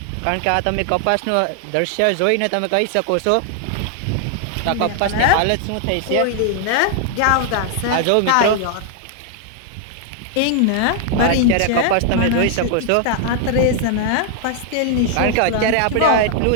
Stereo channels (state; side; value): different; both; correlation 0.00